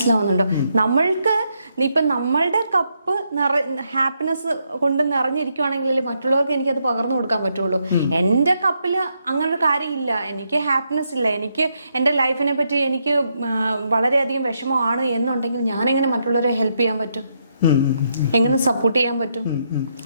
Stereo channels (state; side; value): inverted; both; correlation -0.79